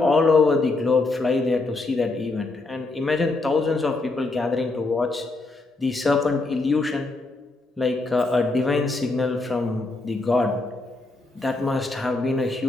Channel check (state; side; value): quieter; right; 3.2 dB